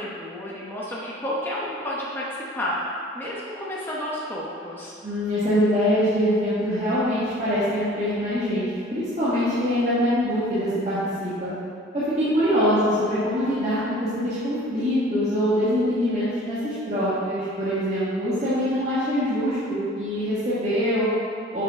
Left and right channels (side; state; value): both; normal; correlation 0.48